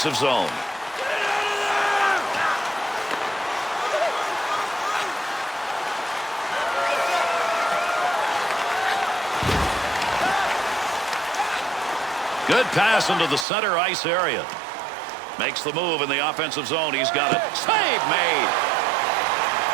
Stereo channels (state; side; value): drops out; left; at 13.5 s